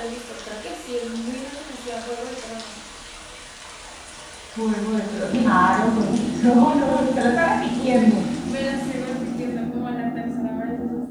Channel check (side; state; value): both; identical; correlation 1.00